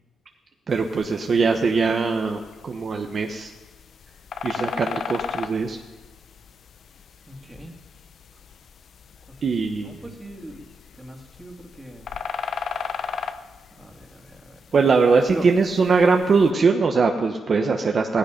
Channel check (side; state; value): left; quieter; 3.7 dB